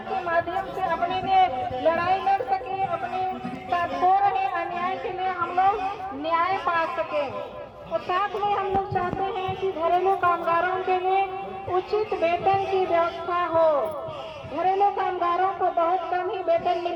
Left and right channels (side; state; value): both; identical; correlation 1.00